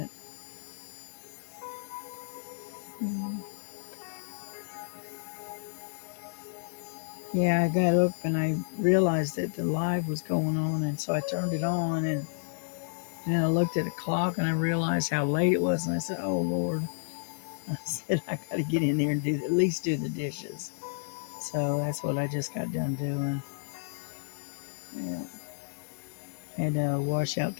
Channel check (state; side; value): silent; right; digital silence